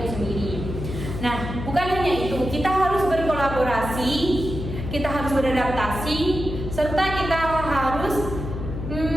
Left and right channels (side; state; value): left; noise; hum, 6 dB below the sound